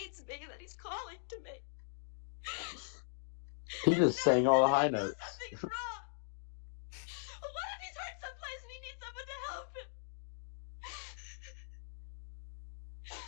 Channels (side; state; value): right; silent; digital silence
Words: me, that he's calling to me. He just sang all the high notes. What if he's hurt someplace